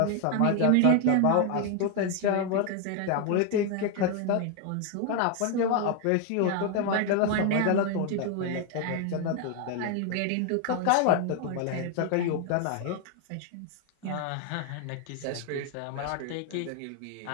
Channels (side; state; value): both; different; correlation 0.01